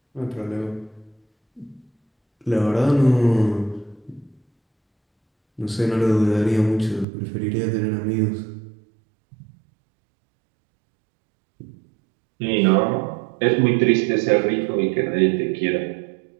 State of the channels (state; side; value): drops out; left; at 7.1 s